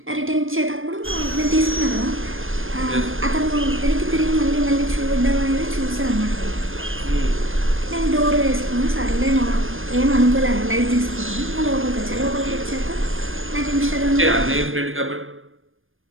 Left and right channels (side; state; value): left; late; 0.59 ms